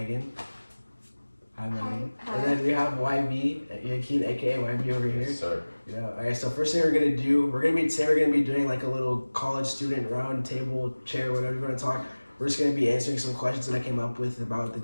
Hi, Megan. Hi. And then we have YB, Yakeen, aka YB over here. Yes, sir. Yeah. Alright, so first thing we're gonna do, we're gonna be doing like a little college student round table, chair, whatever you want to talk. We're just gonna be answering some questions that I came up with about the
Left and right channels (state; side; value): inverted; both; correlation -1.00